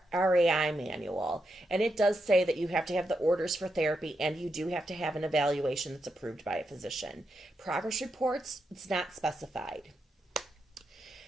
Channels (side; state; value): both; normal; correlation 0.84